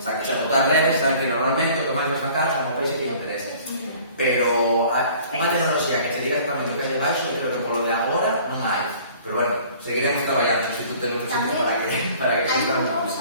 que xa botar redes, saben que normalmente o que máis vas sacar son os peixes que lle interesen. Pero unha tecnoloxía que se diga exactamente o que hai debaixo, creo que polo de agora non hai. Pero bueno, seguiremos traballando, se tú temos sitios para que exista un... Tamén hai unha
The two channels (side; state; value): both; inverted; correlation -0.50